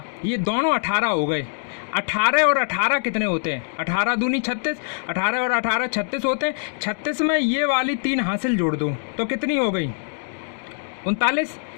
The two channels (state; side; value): silent; right; digital silence